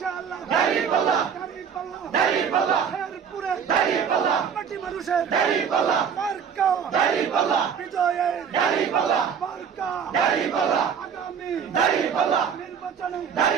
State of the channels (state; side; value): quieter; left; 7.3 dB